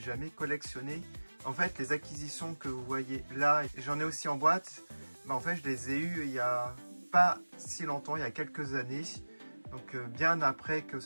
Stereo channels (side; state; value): both; inverted; correlation -1.00